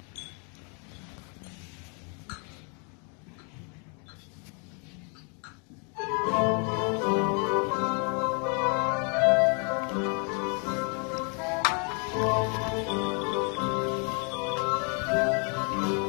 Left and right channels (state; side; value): quieter; right; 37.0 dB